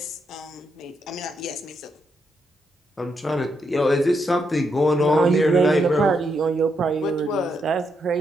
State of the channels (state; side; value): normal; both; correlation 0.80